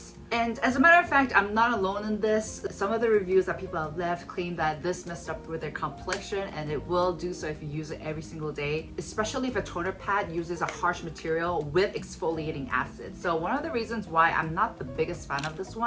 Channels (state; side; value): identical; both; correlation 1.00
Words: And as a matter of fact, I'm not alone in this. Some of the reviews that people have left claim that this messed up with their complexion, and it will do so if you use it every single day, especially if a toner pad uses a harsh material with exfoliating acid. So one of the reasons why I'm not the biggest fan of this